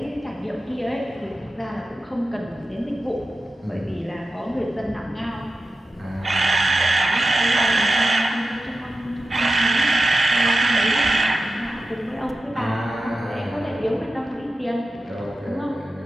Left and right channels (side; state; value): both; normal; correlation 0.92